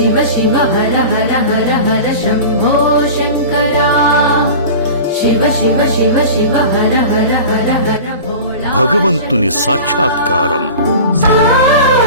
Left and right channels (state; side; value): inverted; both; correlation -0.35